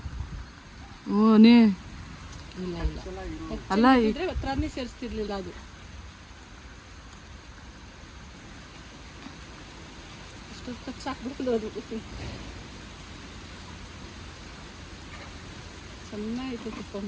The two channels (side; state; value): both; identical; correlation 1.00